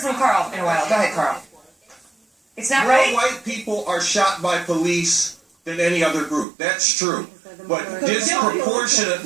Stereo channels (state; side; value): drops out; left; at 6.5 s